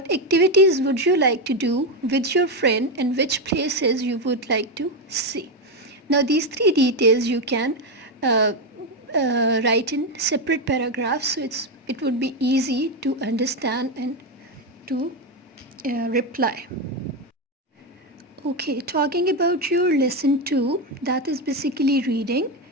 activities would you like to do with your friend and which places you would like to see. Now these three details you can write in separate paragraphs, so it would be easy to understand and to reply. Okay, talking about your lesson 2, that is basically reading.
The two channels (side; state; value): both; normal; correlation 0.09